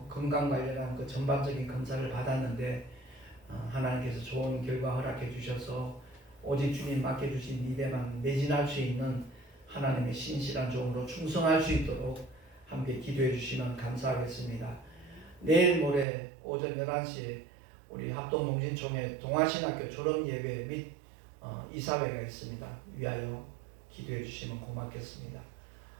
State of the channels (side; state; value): left; drops out; at 16.1 s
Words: 건강 관련한 그 전반적인 검사를 받았는데 하나님께서 좋은 결과 허락해 주셔서 오직 주님 맡겨주신 일에만 매진할 수 있는 하나님의 신실한 종으로 충성할 수 있도록 함께 기도해 주시면 감사하겠습니다. 내일 모레 오전 11시에 우리 합동농신총회 동아신학교 졸업예배 및 이사회가 있습니다. 위하여 기도해 주시면 고맙겠습니다.